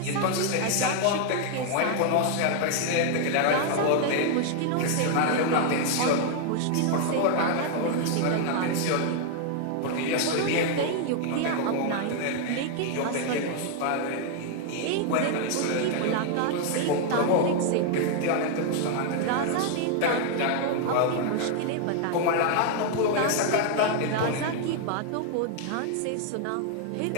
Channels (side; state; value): both; different; correlation 0.00